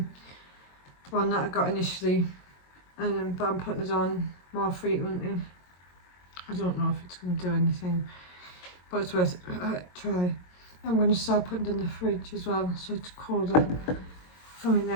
one that I got initially, but I'm putting it on more frequently. I don't know if it's going to do anything, but it's worth a try. I'm going to start putting it in the fridge as well, so it's colder for my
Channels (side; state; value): right; late; 22 ms